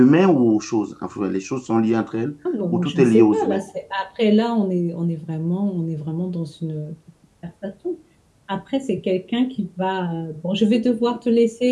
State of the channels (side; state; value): both; identical; correlation 1.00